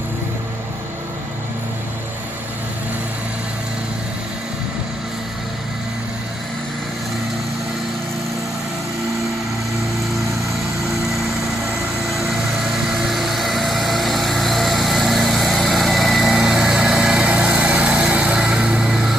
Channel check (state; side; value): normal; both; correlation 0.77